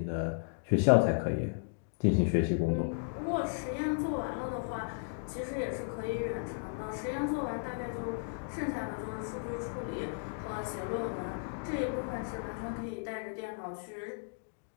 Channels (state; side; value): silent; right; digital silence